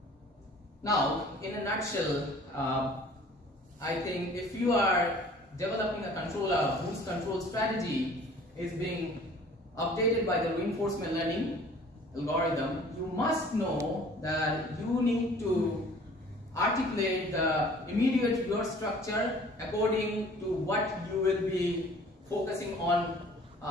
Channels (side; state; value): both; normal; correlation 0.50